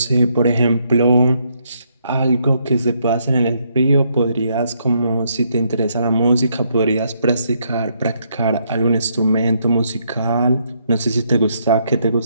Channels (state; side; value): inverted; both; correlation -0.74